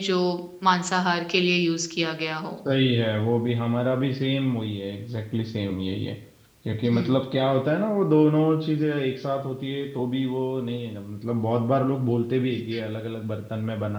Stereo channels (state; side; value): identical; both; correlation 1.00